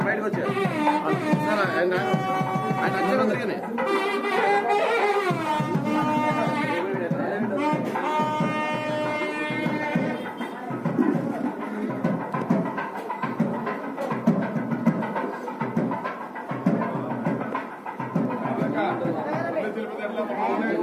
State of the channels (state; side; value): identical; both; correlation 1.00